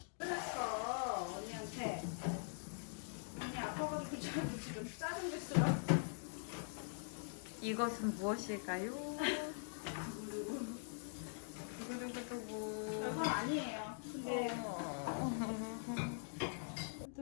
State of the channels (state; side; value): silent; right; digital silence